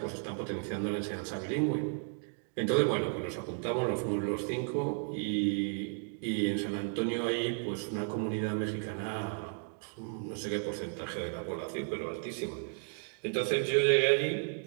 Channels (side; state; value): left; silent; 55 dB below the other